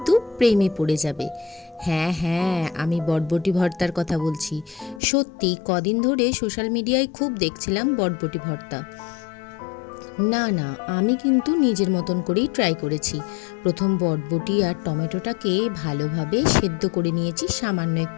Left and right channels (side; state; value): right; drops out; at 5.0 s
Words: প্রেমে পড়ে যাবে। হ্যাঁ হ্যাঁ, আমি বটবটি ভর্তার কথা বলছি। সত্যি কদিন ধরে সোশ্যাল মিডিয়ায় খুব দেখছিলাম বটবটি ভর্তা। না না, আমি কিন্তু নিজের মতন করেই ট্রাই করেছি। প্রথম বটবটি আর টমেটোটাকে ভালোভাবে সেদ্ধ করে নিয়েছি সামান্য